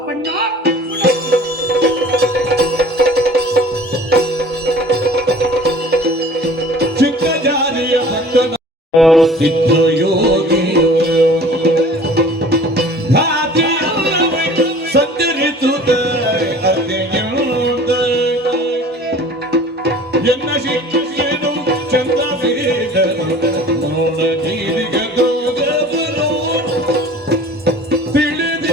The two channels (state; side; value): normal; both; correlation 0.46